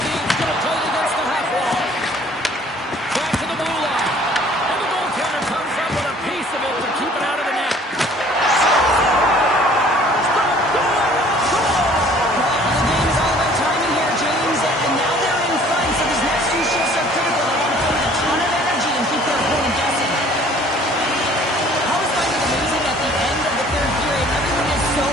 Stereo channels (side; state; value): both; normal; correlation 0.54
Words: going to play it against the half wall. Back to the blue line. And the goaltender comes up with a piece of it to keep it out of the net. Well, the game is all about timing here, James, and now they're